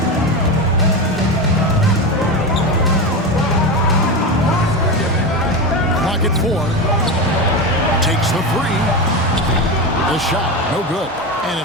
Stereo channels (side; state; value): both; normal; correlation 0.19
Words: Clock at 4. Takes the three. The shot, no good. And